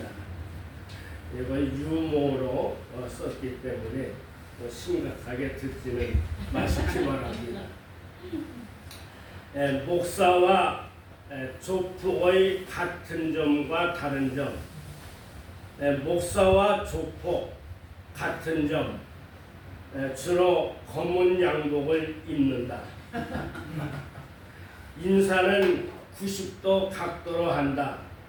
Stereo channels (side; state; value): both; identical; correlation 1.00